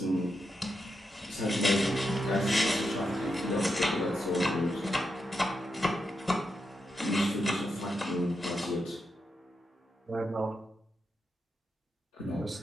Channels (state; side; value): normal; both; correlation 0.85